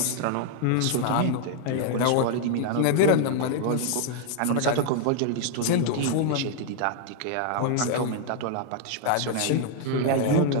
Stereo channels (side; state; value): both; different; correlation 0.00